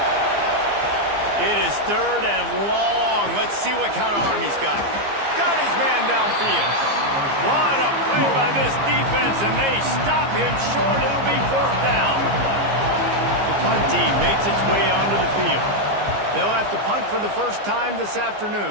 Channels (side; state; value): left; late; 15 ms